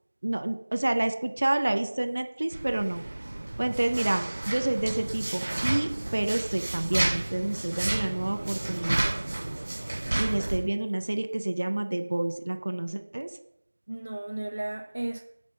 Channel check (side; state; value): both; inverted; correlation -1.00